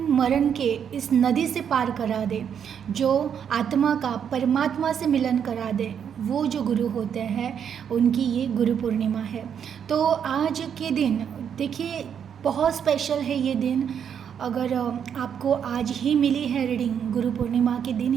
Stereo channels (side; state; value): left; quieter; 8.1 dB